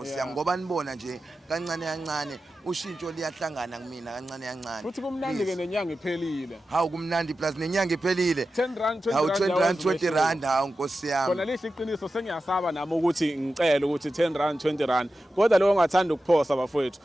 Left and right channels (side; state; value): both; normal; correlation 0.92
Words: yami ngoba nibona nje kancane ushintsho liyahlangana kumina kancane futhi kumnandi ke nenyanga iphelile hawu kumnandi plus nenyanga iphelile 10 rand 20 hawu rand 20 rand 20 rand hawu Nkosi yami khona lihle iqiniso sengiyasaba nami ukuthi ngicela ukuthi 10 rand 20 rand kodwa lo ngathanda ukuphosa bafowethu